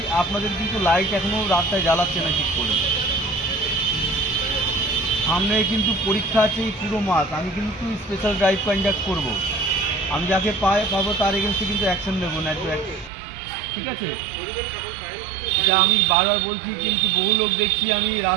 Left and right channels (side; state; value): left; drops out; at 13.1 s